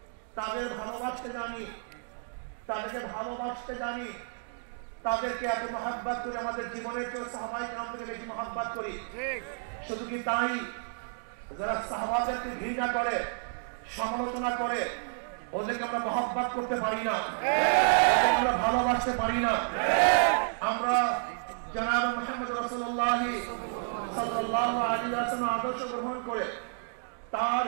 তাদের ভালোবাসতে জানি, তাদেরকে ভালোবাসতে জানি, তাদেরকে এত মহব্বত করি, আমাদের জীবনের কেউ সাহাবায়ে কেরাম থেকে বেশি মহব্বত করি। শুধু কি তাই, যারা সাহাবাদেরকে ঘৃণা করে, সমালোচনা করে, ওদেরকে আমরা মহব্বত করতে পারি না, আমরা ভালোবাসতে পারি না। আমরা জনাব মুহাম্মদ রাসূলুল্লাহ সাল্লাল্লাহু আলাইহি ওয়াসাল্লাম আদর্শ গ্রহণ করে তার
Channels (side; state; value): left; silent; digital silence